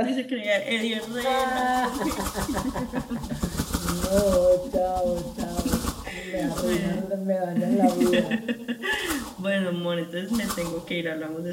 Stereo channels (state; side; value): identical; both; correlation 1.00